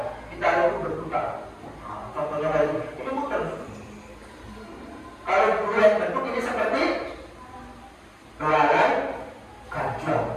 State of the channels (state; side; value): identical; both; correlation 1.00